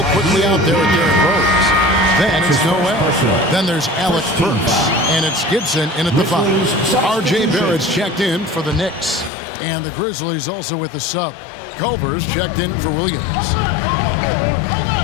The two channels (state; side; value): drops out; right; at 9.3 s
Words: quickly out there with Derrick Rose. Then it's Noel. Then there's Alec Burks. And it's Gibson in at the 5. R.J. Barrett's checked in for the Knicks. And the Grizzlies also with the sub. Culver's checked in for Williams.